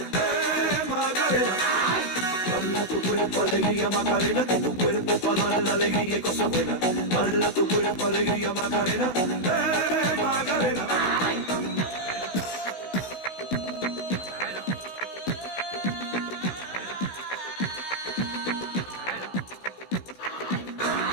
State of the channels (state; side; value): late; right; 16 ms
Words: Macarena. Dala tu cuerpo alegría Macarena, que tu cuerpo es para dar la alegría y cosas buenas. Dala tu cuerpo alegría Macarena, Macarena.